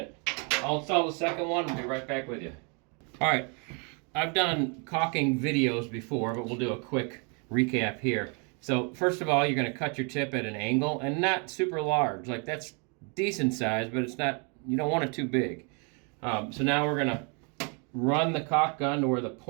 I'll install the second one and be right back with you. All right, I've done caulking videos before, but we'll do a quick recap here. So first of all, you're going to cut your tip at an angle, and not super large. Like, that's decent size, but it's not, you don't want it too big. So now we're going to run the caulk gun to where the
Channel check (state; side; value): quieter; left; 35.7 dB